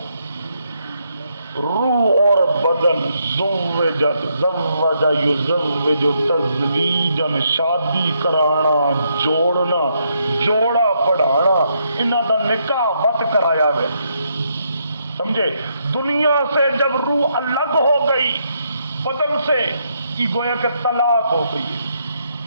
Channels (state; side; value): inverted; both; correlation -0.77